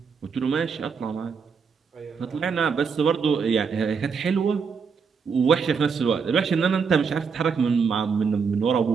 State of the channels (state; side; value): quieter; left; 5.7 dB